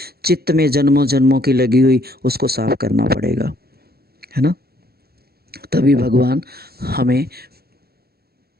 चित्त में जन्मों जन्मों की लगी हुई, उसको साफ करना पड़ेगा, है ना। तभी भगवान हमें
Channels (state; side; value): late; left; 0.46 ms